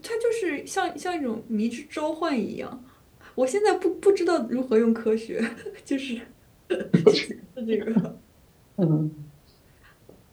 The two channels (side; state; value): both; identical; correlation 1.00